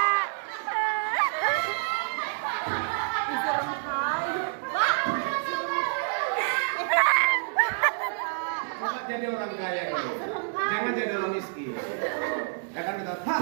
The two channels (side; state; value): left; silent; digital silence